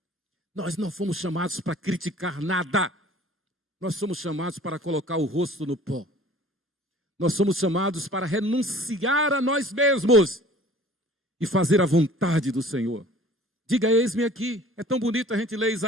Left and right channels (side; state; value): both; normal; correlation 0.49